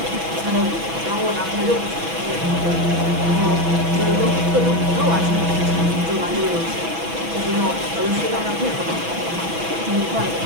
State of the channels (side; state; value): left; late; 6.1 ms